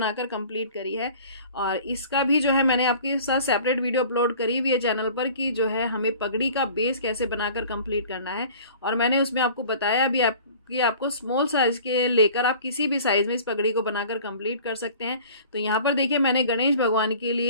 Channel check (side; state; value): both; inverted; correlation -0.46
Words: कंप्लीट करी है। और इसका भी जो है मैंने आपके साथ सेपरेट वीडियो अपलोड करी हुई है चैनल पर कि जो है हमें पगड़ी का बेस कैसे बनाकर कंप्लीट करना है। और मैंने उसमें आपको बताया भी कि आपको स्मॉल साइज के लेकर आप किसी भी साइज में इस पगड़ी को बनाकर कंप्लीट कर सकते हैं। तो यहाँ पर देखिए मैंने गणेश भगवान के